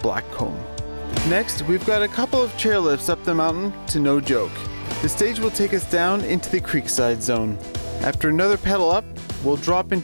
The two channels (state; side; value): inverted; both; correlation -1.00